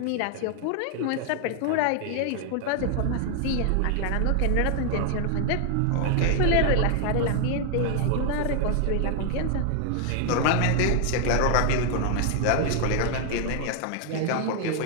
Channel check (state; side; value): different; both; correlation 0.00